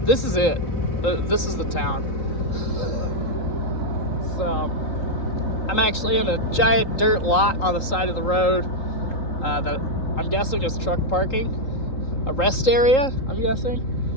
is it. This is the town. So, I'm actually in a giant dirt lot on the side of the road that I'm guessing is truck parking. A rest area, I'm guessing.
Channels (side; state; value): right; late; 3.8 ms